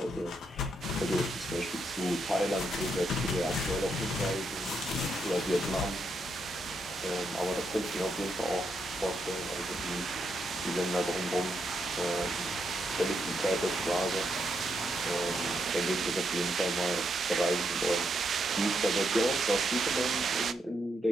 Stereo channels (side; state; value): both; normal; correlation 0.80